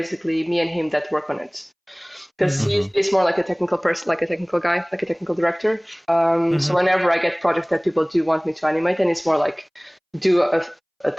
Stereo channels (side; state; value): both; identical; correlation 1.00